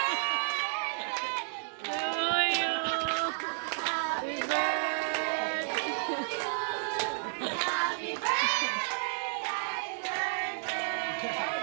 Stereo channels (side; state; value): left; silent; digital silence